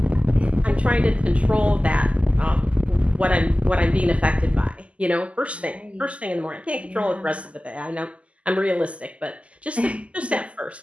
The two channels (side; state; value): left; late; 0.062 ms